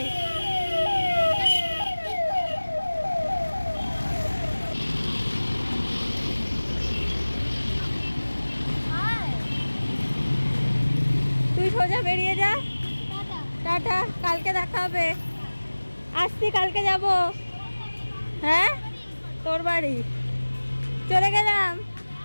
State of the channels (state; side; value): inverted; both; correlation -1.00